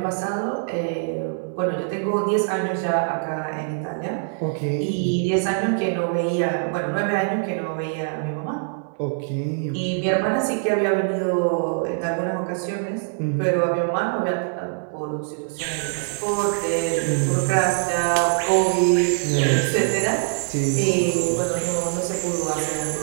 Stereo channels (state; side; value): silent; left; digital silence